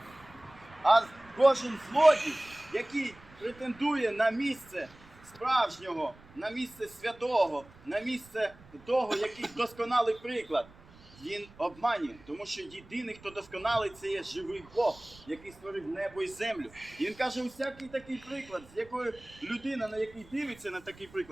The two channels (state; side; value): noise; right; rumble, 23 dB below the sound